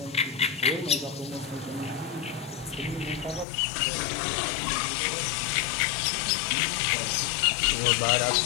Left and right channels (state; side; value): drops out; right; at 3.5 s